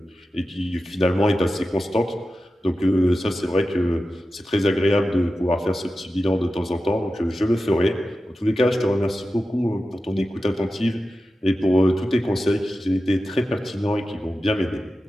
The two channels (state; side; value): normal; both; correlation 0.93